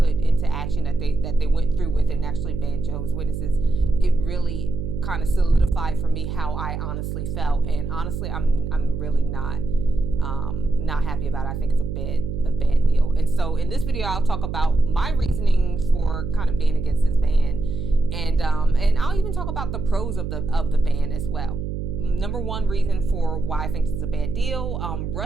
into action, that they went through with it and actually banned Jehovah's Witnesses, it really kind of solidified for me how I honestly felt. And honestly, I'm really not happy about it. I think it's a bad deal. And so in this video, I'll talk about my reasoning for kind of being against this ban, and I'll even talk about the pros of the ban as well. Number one reason for why I think it's a bad deal,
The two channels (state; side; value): noise; right; hum, 4 dB below the sound